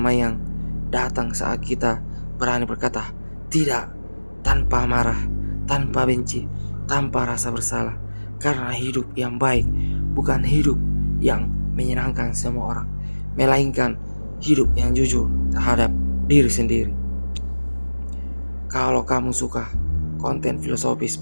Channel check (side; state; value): both; inverted; correlation -1.00